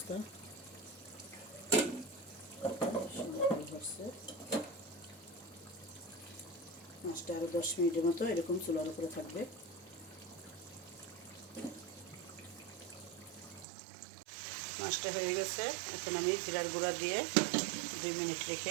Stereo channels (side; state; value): left; drops out; at 13.7 s